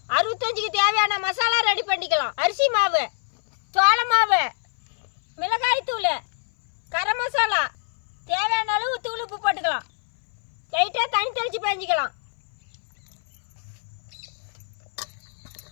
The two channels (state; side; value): silent; right; 60 dB below the other